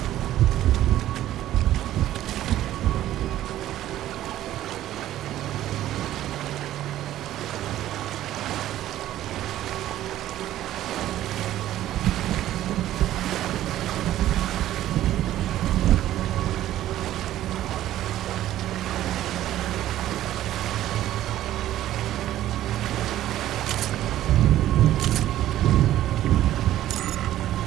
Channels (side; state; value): left; quieter; 13.4 dB